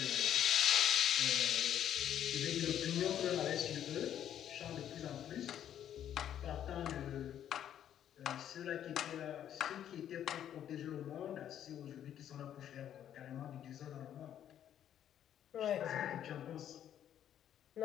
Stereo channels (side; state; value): right; quieter; 10.3 dB